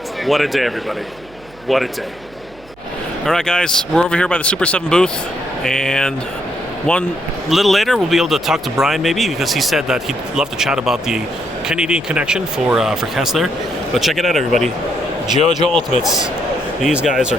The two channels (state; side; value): noise; right; hum, 25 dB below the sound